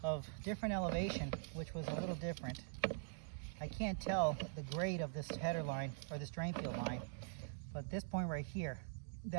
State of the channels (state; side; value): silent; left; digital silence